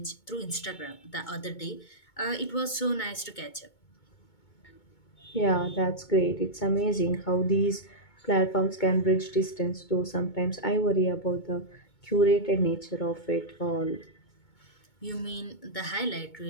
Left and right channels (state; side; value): late; right; 2.2 ms